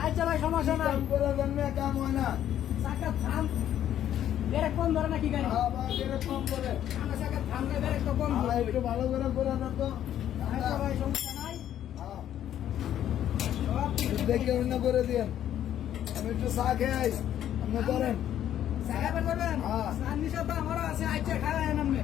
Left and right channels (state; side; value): quieter; right; 11.0 dB